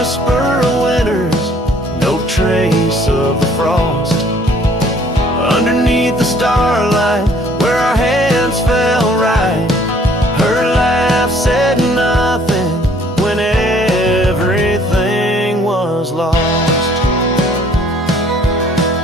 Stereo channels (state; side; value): normal; both; correlation 0.58